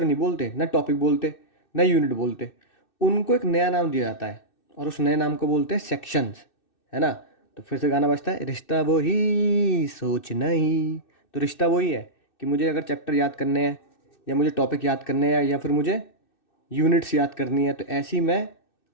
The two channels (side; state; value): right; late; 2.6 ms